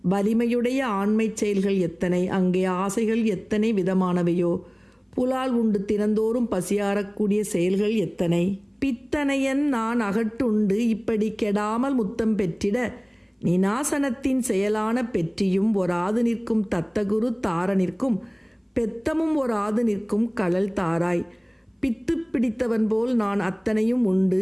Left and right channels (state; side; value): identical; both; correlation 1.00